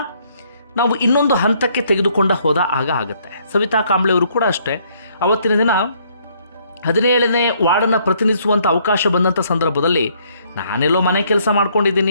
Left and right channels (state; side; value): inverted; both; correlation -0.66